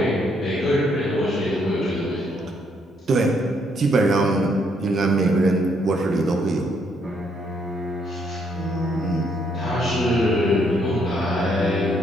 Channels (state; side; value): normal; both; correlation 0.71